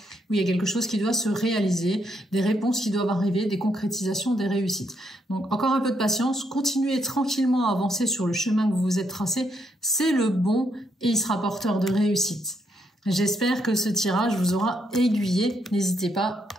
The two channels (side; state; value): both; normal; correlation 0.76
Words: où il y a quelque chose qui doit se réaliser, des réponses qui doivent arriver, des concrétisations, des réussites. Donc encore un peu de patience, continuez tranquillement à avancer sur le chemin que vous vous êtes tracé, c'est le bon et il sera porteur de réussite. J'espère que ce tirage vous aura aiguillé. N'hésitez pas